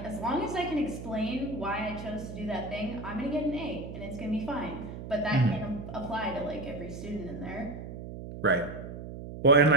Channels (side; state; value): right; noise; hum, 10 dB below the sound